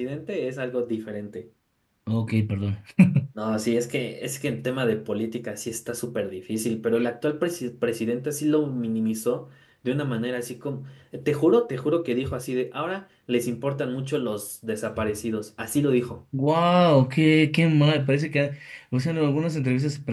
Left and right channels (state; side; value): identical; both; correlation 1.00